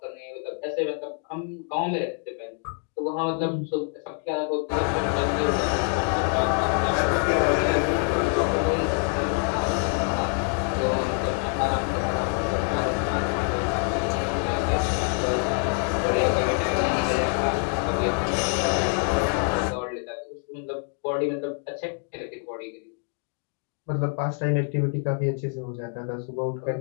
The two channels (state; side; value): quieter; right; 38.9 dB